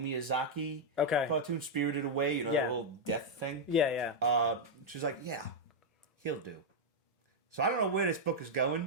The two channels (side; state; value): both; normal; correlation -0.02